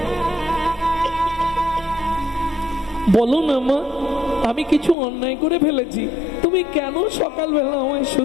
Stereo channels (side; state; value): right; drops out; at 5.0 s